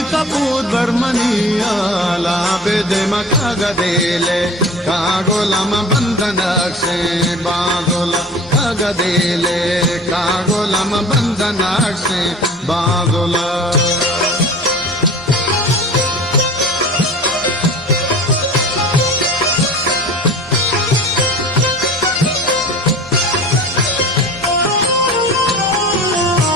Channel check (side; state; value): both; normal; correlation 0.40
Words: कपूर बर्मनिया लाबेदे मकागदेले कागोलम बंधनाक्षे बागोला कागदेले कागोलम बंधनाक्षे बागोला